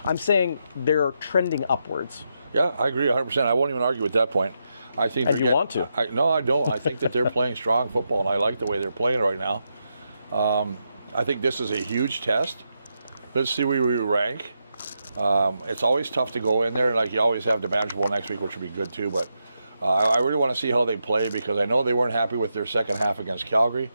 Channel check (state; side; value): inverted; both; correlation -0.84